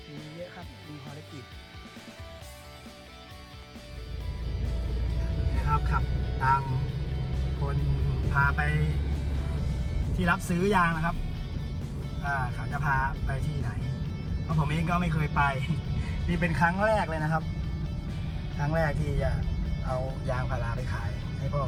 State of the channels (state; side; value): identical; both; correlation 1.00